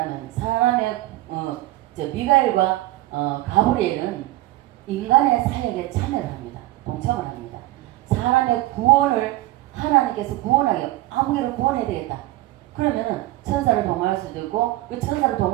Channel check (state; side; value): quieter; left; 17.2 dB